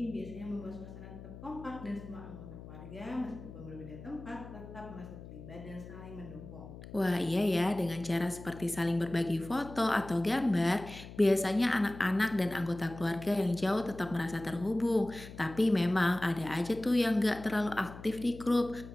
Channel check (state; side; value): noise; left; hum, 14 dB below the sound